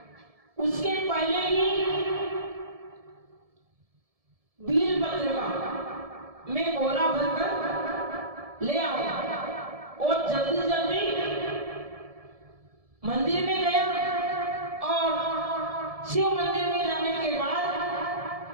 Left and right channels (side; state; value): left; late; 1.7 ms